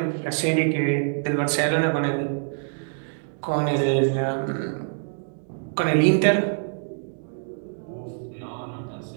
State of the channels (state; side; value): silent; left; 62 dB below the other